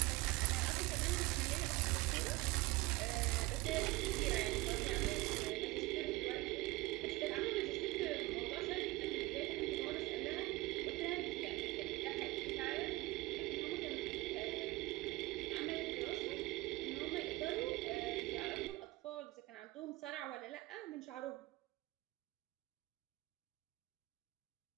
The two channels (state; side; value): quieter; left; 20.5 dB